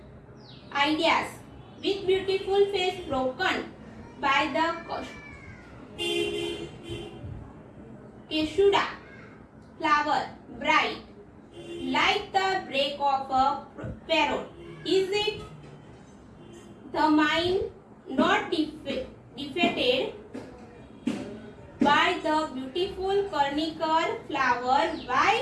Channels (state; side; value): identical; both; correlation 1.00